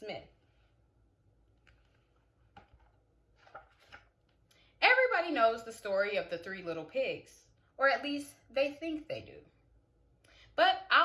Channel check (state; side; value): identical; both; correlation 1.00